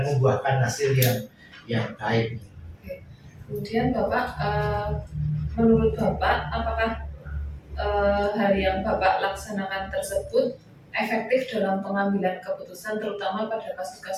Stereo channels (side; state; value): both; identical; correlation 1.00